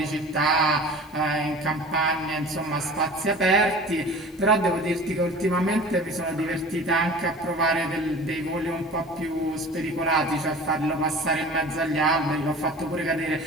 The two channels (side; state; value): both; normal; correlation 0.40